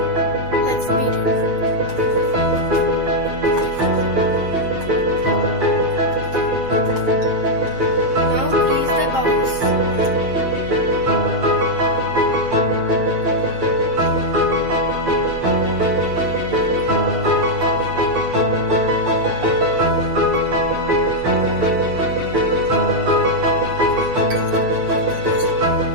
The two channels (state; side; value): late; left; 7.6 ms